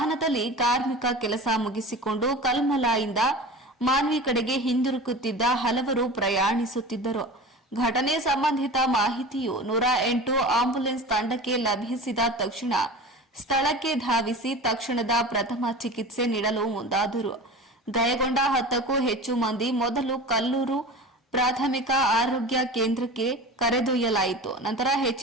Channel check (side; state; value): both; normal; correlation 0.34